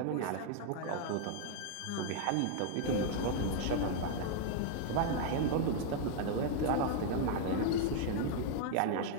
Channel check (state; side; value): different; both; correlation 0.00